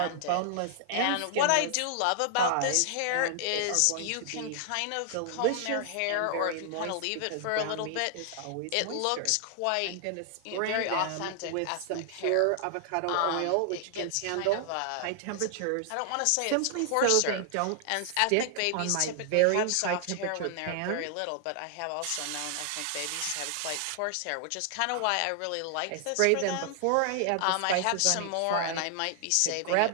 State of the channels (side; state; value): both; different; correlation 0.00